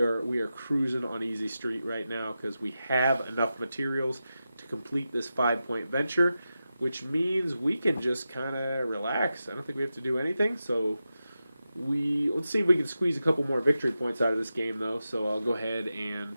cruising on easy street right now because we have enough materials to complete this 5-point venture, which means we can just kind of relax. I don't think we have to do anything. So let's see if we can squeeze a couple more victory points out of this game, though. So I'll go ahead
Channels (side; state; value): both; inverted; correlation -0.91